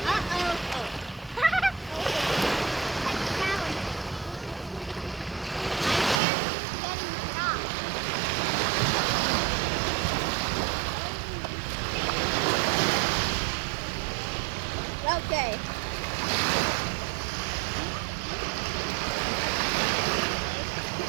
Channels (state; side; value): drops out; left; at 6.2 s